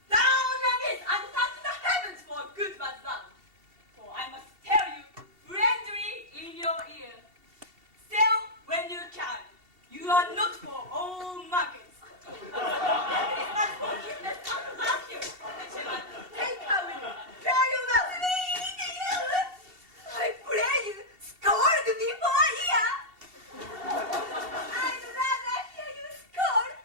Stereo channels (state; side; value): late; left; 2.7 ms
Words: Down on knees and thank the heavens for a good man's love. For I must tell you, friendly in your ear, sell when you can. You are not for all markets. That is not forgiveness and love you. Shepherd, take her with you. Fare you well. I pray you, scold me for a year. I'd rather hear you scold